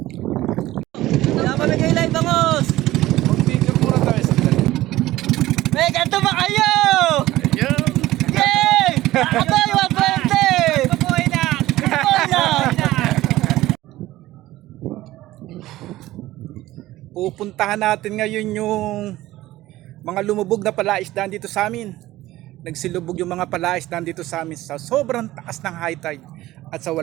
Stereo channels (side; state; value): left; quieter; 16.3 dB